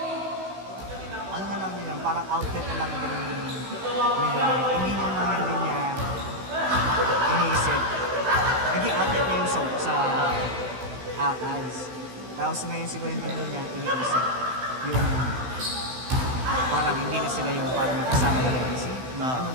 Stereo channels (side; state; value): left; late; 16 ms